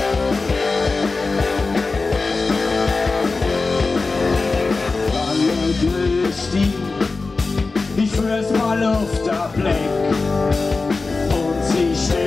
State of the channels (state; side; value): quieter; right; 3.9 dB